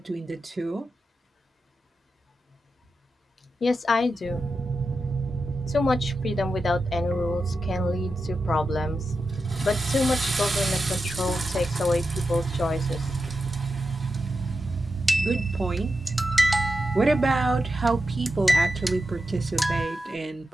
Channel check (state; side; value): normal; both; correlation 0.89